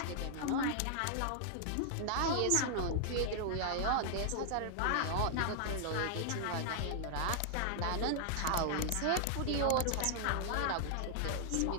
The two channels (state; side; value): different; both; correlation -0.01